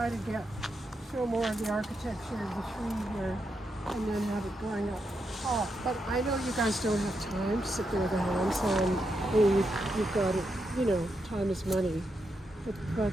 to get show more of the architecture of the tree here and then have it going up top. But I know you guys don't have time to sit there with a handsaw and you've got it, you know, time is money. But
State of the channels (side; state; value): both; normal; correlation 0.83